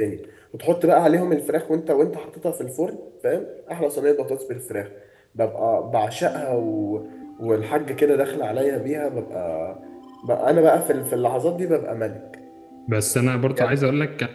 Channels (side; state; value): both; identical; correlation 1.00